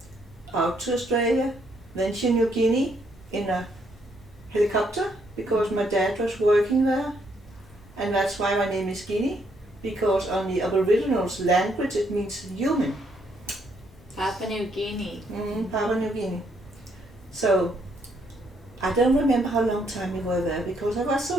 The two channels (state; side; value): normal; both; correlation 0.72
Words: out to Australia, then to New Guinea in a helicopter because my dad was working there. And that's why my name is Guinea, because on the Aboriginals language it means human. Papua New Guinea. Papua New Guinea. So I don't remember how long time we were there because I was so